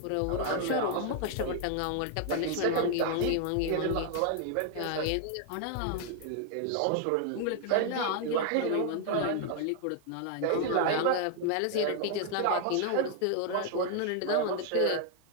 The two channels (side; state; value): both; different; correlation 0.00